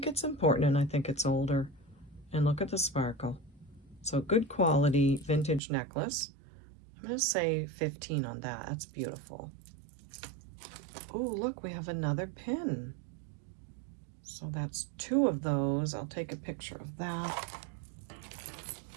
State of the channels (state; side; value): drops out; left; at 5.6 s